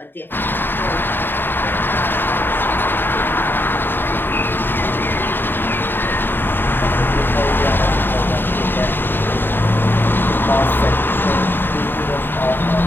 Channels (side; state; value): right; late; 0.097 ms